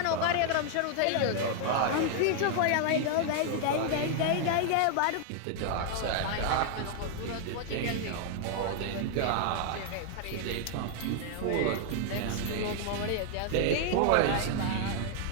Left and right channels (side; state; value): both; different; correlation 0.00